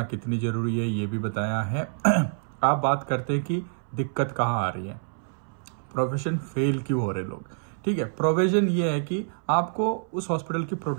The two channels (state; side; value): silent; left; 60 dB below the other